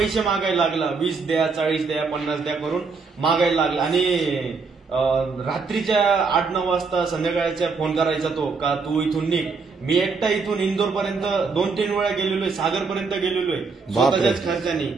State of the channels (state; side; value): quieter; left; 4.7 dB